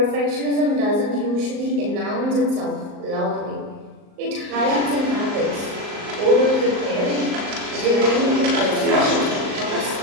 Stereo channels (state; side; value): late; left; 38 ms